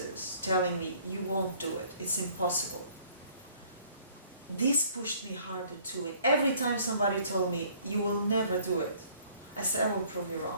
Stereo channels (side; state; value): both; inverted; correlation -0.58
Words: telling me, you won't do it, it's impossible, this pushed me harder too. And every time somebody told me, you will never do it, I said, I will prove you